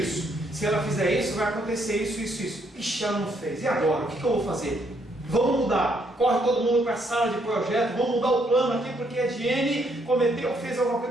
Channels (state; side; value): normal; both; correlation 0.72